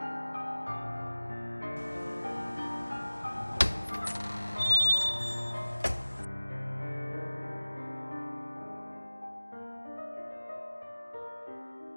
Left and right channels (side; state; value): both; inverted; correlation -1.00